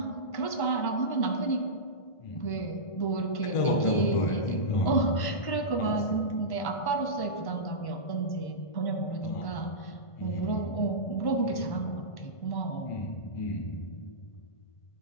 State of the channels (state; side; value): late; right; 1.5 ms